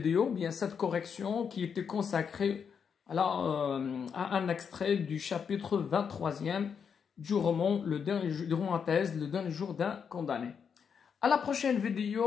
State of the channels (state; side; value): quieter; right; 6.8 dB